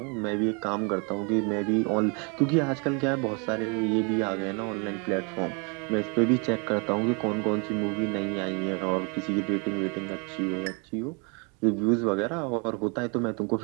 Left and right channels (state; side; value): quieter; left; 33.8 dB